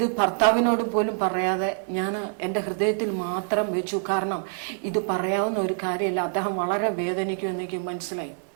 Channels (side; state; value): left; silent; 61 dB below the other